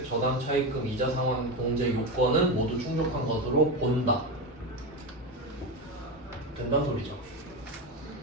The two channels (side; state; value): both; normal; correlation 0.17